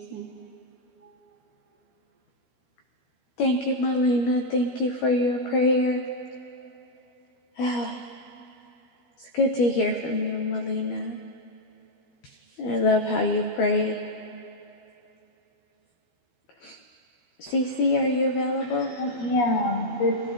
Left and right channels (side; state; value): right; late; 12 ms